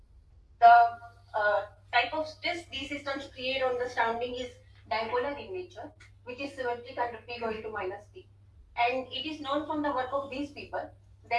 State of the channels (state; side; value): identical; both; correlation 1.00